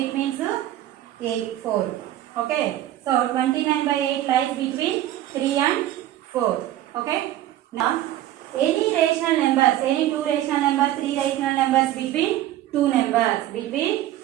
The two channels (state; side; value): quieter; left; 13.5 dB